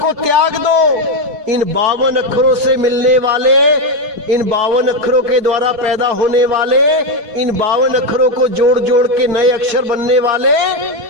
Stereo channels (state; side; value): late; left; 4.7 ms